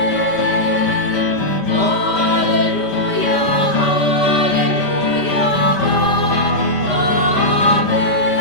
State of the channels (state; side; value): late; right; 5.1 ms